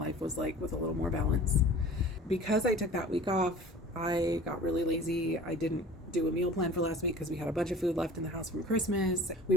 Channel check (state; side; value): normal; both; correlation 0.43